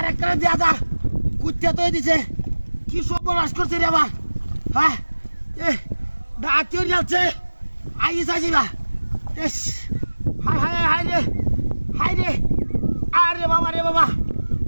একটা দেয়া যা কুত্তা তো দিছে কি সব বলা করছে রে আবার হ্যাঁ ডাক্তার যাচ্ছে আইস আসি না হাই হাই হাই রে হাই রে আরে বাবা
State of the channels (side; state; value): both; inverted; correlation -1.00